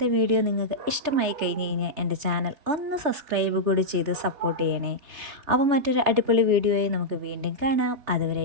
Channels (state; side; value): late; left; 3.4 ms